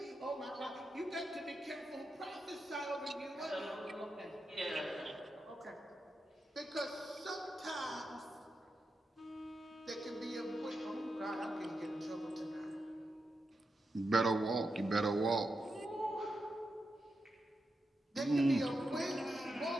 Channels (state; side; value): normal; both; correlation 0.88